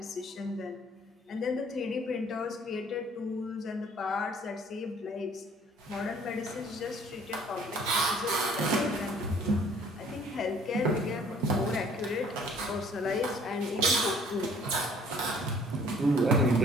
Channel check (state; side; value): normal; both; correlation 0.56